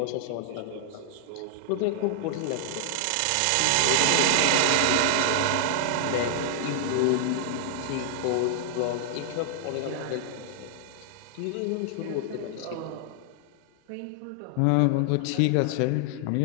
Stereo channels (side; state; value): both; different; correlation 0.00